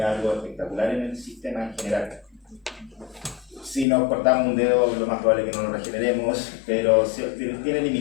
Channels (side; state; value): right; drops out; at 3.9 s